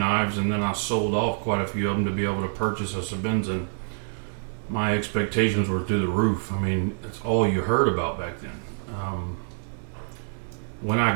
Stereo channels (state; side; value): silent; left; digital silence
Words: and then I sold off quite a few of them to be able to purchase a Sebenza. And my expectations were through the roof. I mean, it's all you heard about back then. When I